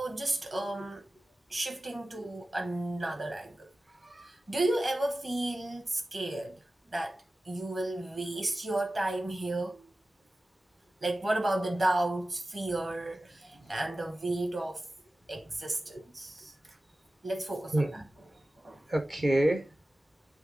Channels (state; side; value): normal; both; correlation 0.95